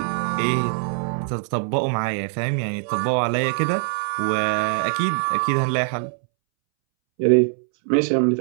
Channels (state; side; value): silent; left; 64 dB below the other